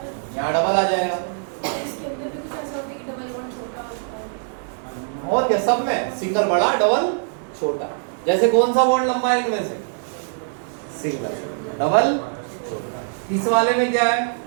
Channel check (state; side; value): silent; left; 64 dB below the other